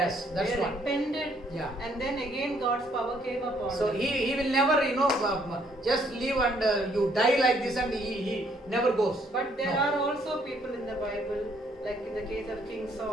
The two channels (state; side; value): normal; both; correlation 0.67